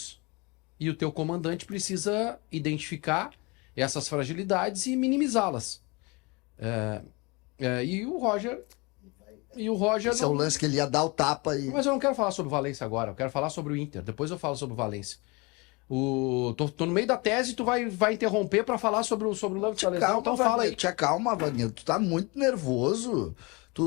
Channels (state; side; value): quieter; right; 27.3 dB